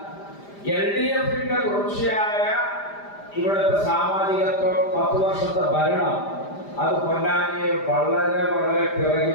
LDFന്റെ തുടർച്ചയായ ഇവിടുത്തെ സാമാജികത്വം, 10 വർഷത്തെ ഭരണം, അത് പൊന്നാനിയെ വളരെ വളരെ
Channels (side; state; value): right; late; 5.0 ms